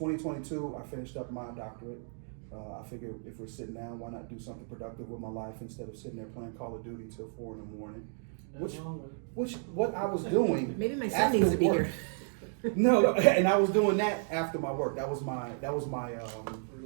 I finished up my doctorate. I figured if we're sitting down, why not do something productive with my life instead of sitting there playing Call of Duty till 4 in the morning? What I was doing. Maybe my son needs to be work. here. No, and I was doing that after my work. That was my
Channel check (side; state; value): left; silent; 55 dB below the other